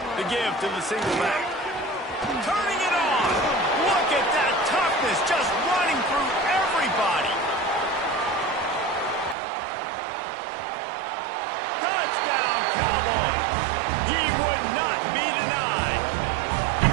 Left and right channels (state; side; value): drops out; left; at 9.3 s